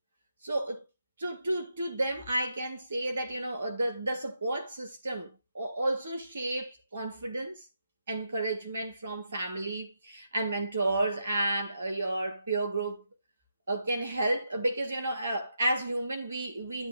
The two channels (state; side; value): inverted; both; correlation -0.83